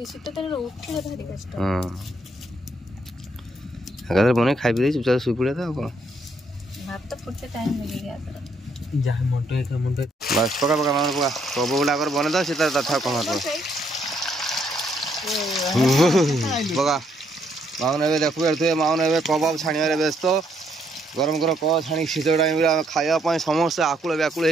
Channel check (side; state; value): both; normal; correlation 0.72